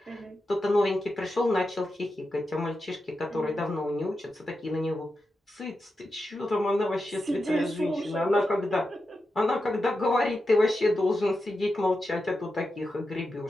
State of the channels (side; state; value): both; normal; correlation 0.89